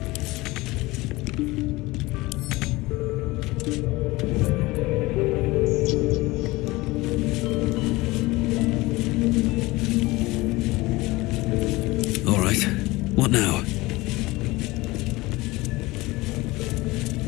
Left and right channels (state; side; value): quieter; right; 21.1 dB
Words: All right, what now?